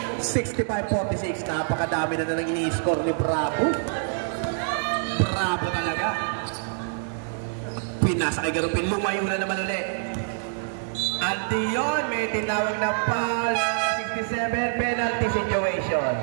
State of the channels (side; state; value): left; silent; digital silence